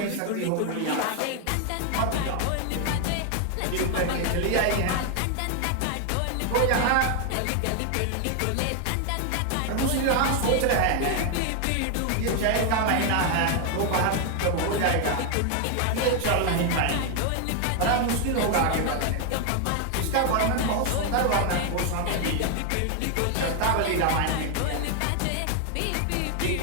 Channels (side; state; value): both; different; correlation 0.00